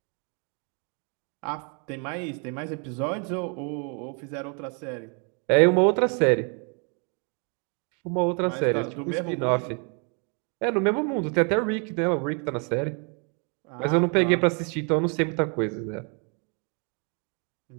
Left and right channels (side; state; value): left; quieter; 37.8 dB